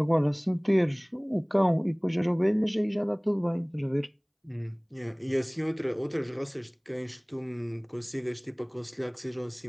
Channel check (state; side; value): identical; both; correlation 1.00